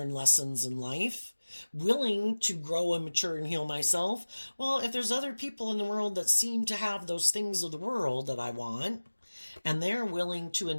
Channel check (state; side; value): inverted; both; correlation -1.00